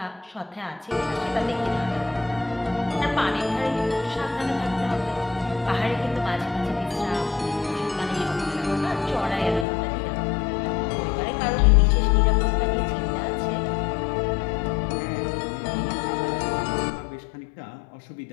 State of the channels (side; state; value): right; drops out; at 9.7 s